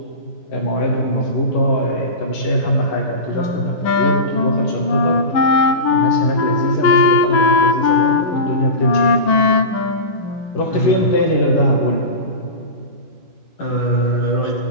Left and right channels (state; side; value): late; right; 11 ms